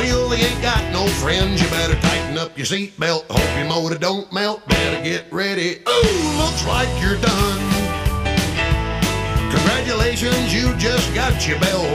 he ain't got no friends. You better tighten up your seatbelt, hope your motor don't melt. Better get ready. Ooh, looks like you're done. Congratulations, you just got your bell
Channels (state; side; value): identical; both; correlation 1.00